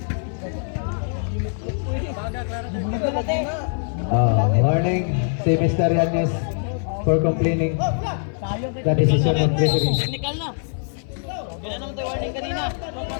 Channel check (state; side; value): silent; right; 57 dB below the other